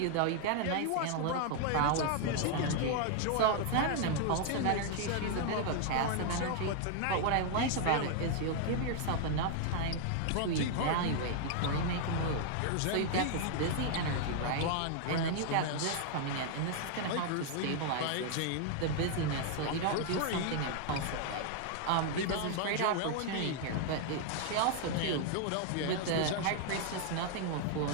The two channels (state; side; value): different; both; correlation 0.00